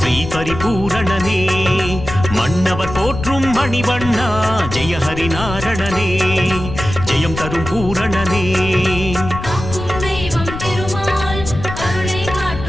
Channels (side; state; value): left; noise; rumble, 8 dB below the sound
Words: பரிபூரணனே மன்னவர் போற்றும் மணிவண்ணா ஜெய ஹரி நாரணனே ஜெயம் தரும் பூரணனே